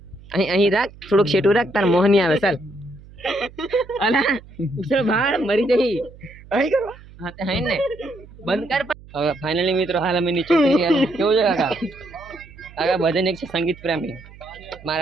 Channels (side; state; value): right; noise; hum, 21 dB below the sound